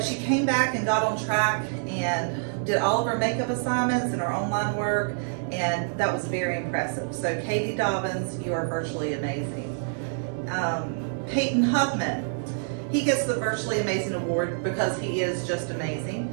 she came back and got on track and did all of her makeup assignments and her online work, and that was very impressive. So Katie Dobbins, you are virtually amazing. Peyton Huffman. He gets the Virtually Amazing Award because he is just amazing.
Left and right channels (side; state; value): left; silent; digital silence